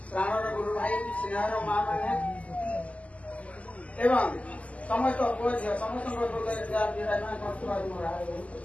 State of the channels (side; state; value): right; late; 0.068 ms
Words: प्राणर गुरु भाई स्नेहर माँ मैंने एवं समस्त समस्त